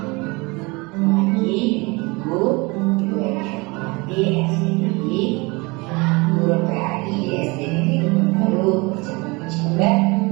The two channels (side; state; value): left; quieter; 25.9 dB